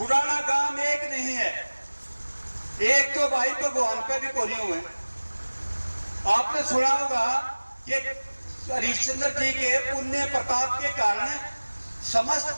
गांव एक नहीं है, एक तो भाई भगवान पे भी कोरियो हुए। आपने सुना होगा कि हरिश्चंद्र जी के पुण्य प्रताप के कारण समस्त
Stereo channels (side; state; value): both; inverted; correlation -1.00